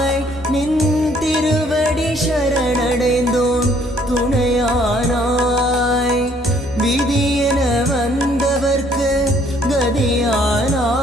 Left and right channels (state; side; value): normal; both; correlation 0.63